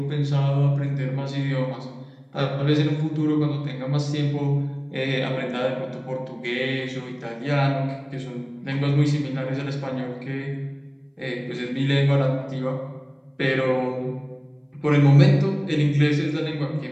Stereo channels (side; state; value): both; identical; correlation 1.00